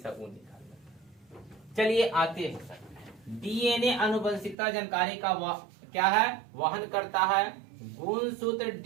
वो निकाल लेता। चलिए आते हैं, DNA आनुवंशिकता जानकारी का क्या है, वहन करता है। गुणसूत्र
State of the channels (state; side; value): drops out; left; at 4.5 s